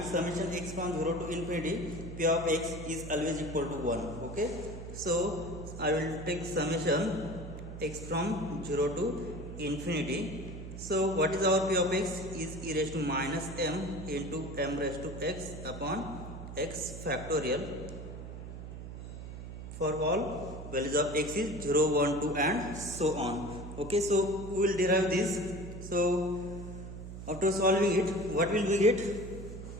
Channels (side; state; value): right; noise; hum, 10 dB below the sound